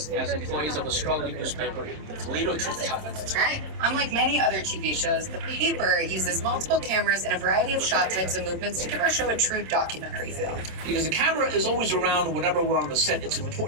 as employees of a struggling newspaper, the Toledo Truth-Teller. That's right. Unlike many other TV shows, the paper uses multiple cameras and a variety of shot types and movements to give our show a true documentary feel. Because the camera is always around whenever we're on the set, it's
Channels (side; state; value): left; late; 26 ms